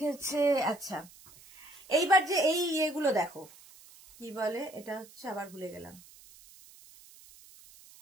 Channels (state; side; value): noise; right; hiss, 22 dB below the sound